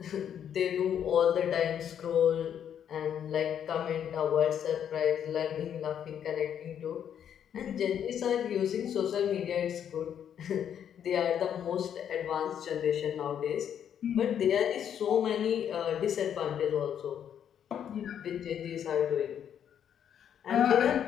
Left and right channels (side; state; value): right; quieter; 9.1 dB